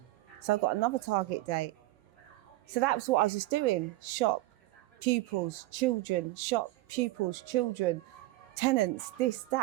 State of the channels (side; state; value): left; quieter; 18.7 dB